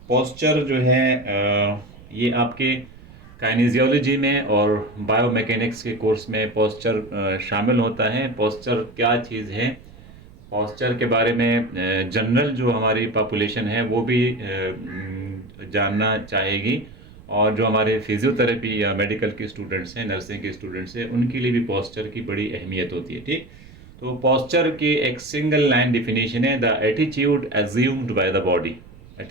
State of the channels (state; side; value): noise; right; rumble, 21 dB below the sound